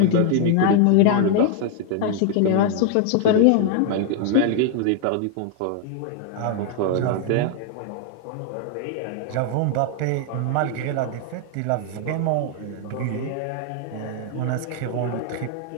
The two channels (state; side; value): different; both; correlation 0.00